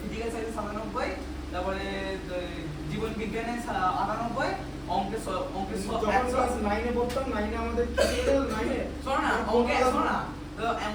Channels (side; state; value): both; identical; correlation 1.00